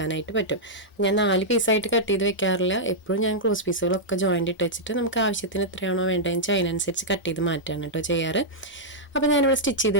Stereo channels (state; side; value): normal; both; correlation -0.08